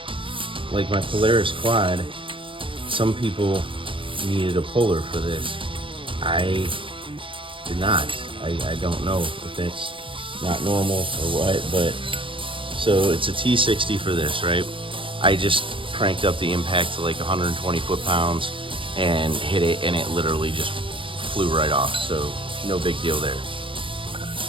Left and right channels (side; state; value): left; late; 0.25 ms